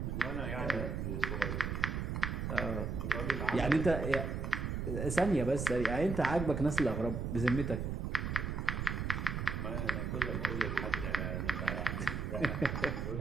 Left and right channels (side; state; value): right; noise; rumble, 2 dB below the sound